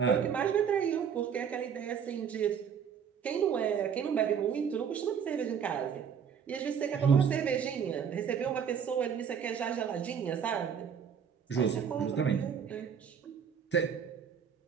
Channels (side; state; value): left; quieter; 7.5 dB